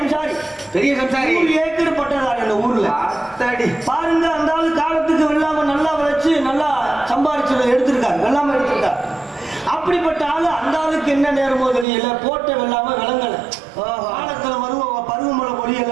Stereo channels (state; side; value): drops out; left; at 11.9 s